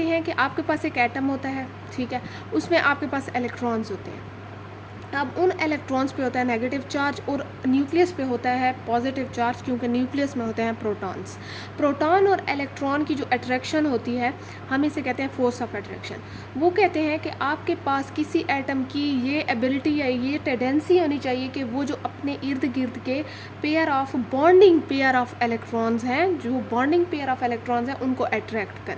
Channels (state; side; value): identical; both; correlation 1.00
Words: हैं कि आपके पास एक एटम होता है, ठीक है, उसमें आपके पास इलेक्ट्रॉन्स होते हैं। अब उन इलेक्ट्रॉन्स पे होता है नेगेटिव चार्ज और न्यूक्लियस पे होता है पॉजिटिव चार्ज, क्योंकि न्यूक्लियस में होते हैं प्रोटॉन्स। प्रोटॉन और इलेक्ट्रॉन की जो अट्रैक्शन होती है, हम इसे कहते हैं फोर्स ऑफ अट्रैक्शन। वो कहते हैं कि आपके पास किसी एटम की ये एबिलिटी या ये टेंडेंसी होनी चाहिए कि वो जो अपने इर्द गिर्द के pair of bonding pair of electrons हैं, जो बॉन्डिंग पेयर ऑफ इलेक्ट्रॉन्स हैं, उनको अट्रैक्ट